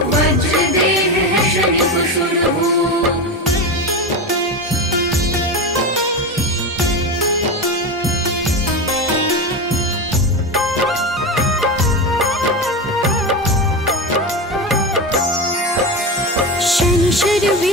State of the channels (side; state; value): both; normal; correlation 0.20